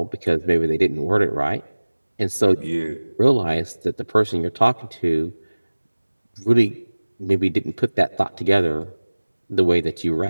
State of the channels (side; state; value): both; inverted; correlation -1.00